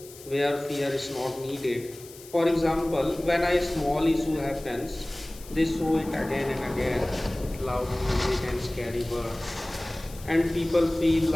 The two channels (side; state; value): left; noise; hiss, 19 dB below the sound